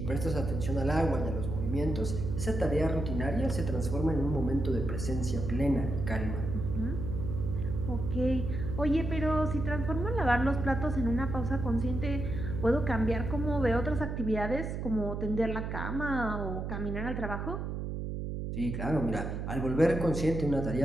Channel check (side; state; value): right; noise; hum, 4 dB below the sound